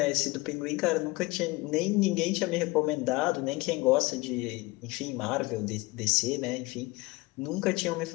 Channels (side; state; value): right; quieter; 22.3 dB